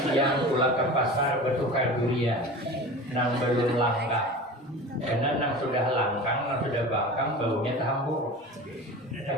siang pulang ke pasar bertukar durian. Nang belum langka. Karena nang sudah langkang, nang sudah bangkang, baunya terhambur.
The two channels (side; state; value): both; normal; correlation 0.34